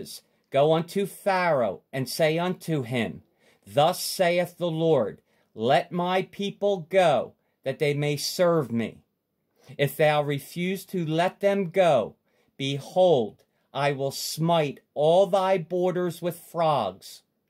Go unto Pharaoh, and say unto him, Thus saith the Lord, Let my people go, that they may serve me. If thou refuse to let them go, behold, I will smite all thy borders with frogs.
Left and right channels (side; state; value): both; identical; correlation 1.00